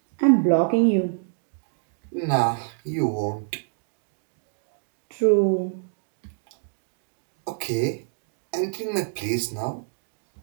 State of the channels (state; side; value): silent; left; digital silence